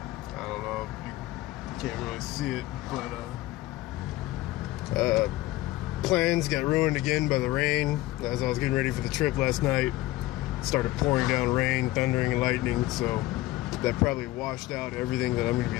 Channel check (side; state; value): right; quieter; 17.2 dB